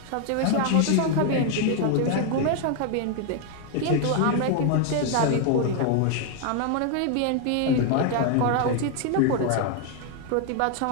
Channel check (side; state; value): both; different; correlation 0.01